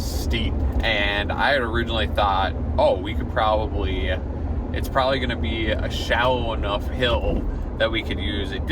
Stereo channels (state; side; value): identical; both; correlation 1.00